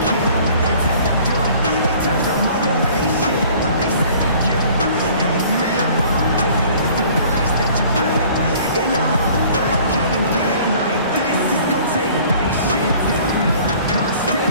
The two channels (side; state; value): both; inverted; correlation -0.52